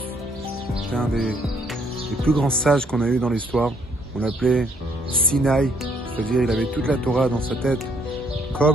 c'est un des plus grands sages qu'on a eu dans l'histoire. On l'appelait Sinaï, c'est-à-dire il avait toute la Torah dans sa tête,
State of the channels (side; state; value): both; normal; correlation 0.67